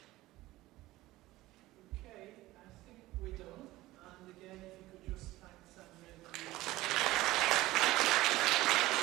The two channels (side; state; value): left; quieter; 17.7 dB